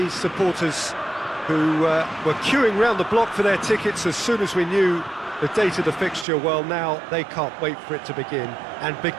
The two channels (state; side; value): drops out; left; at 6.2 s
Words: supporters who were queuing round the block for their tickets as soon as we knew the date of the fixture, well, now they can't wait for it to begin. And